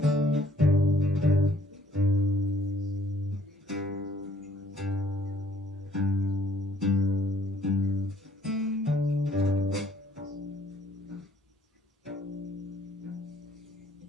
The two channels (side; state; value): both; normal; correlation 0.63